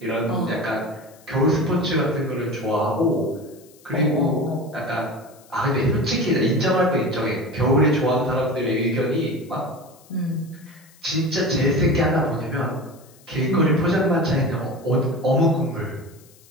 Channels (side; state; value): left; noise; hiss, 27 dB below the sound